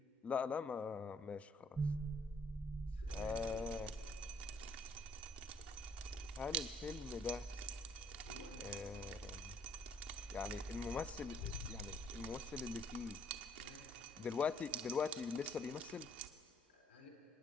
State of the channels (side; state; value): both; normal; correlation 0.65